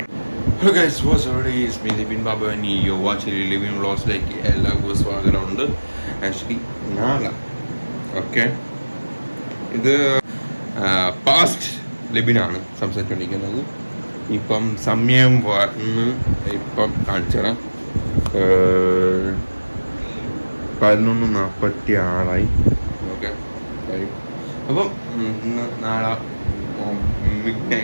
Hello guys, what's every is me Dipin Babu and you watching living വ്ളോഗ്സിലേക്ക് എല്ലാവർക്കും സ്വാഗതമുണ്ട്. ആക്ച്വലി നാളെ ഇത് പാസ്റ്റ് ലിബിനാണ് സംസാരിച്ചുകൊണ്ടിരിക്കുന്നത്. ഇപ്പം സമയം വന്ന് ഇപ്പം കാണിച്ചുതരാം. 11:46 ഓക്കെ. അപ്പം നാളെ മിഡ്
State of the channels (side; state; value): both; inverted; correlation -1.00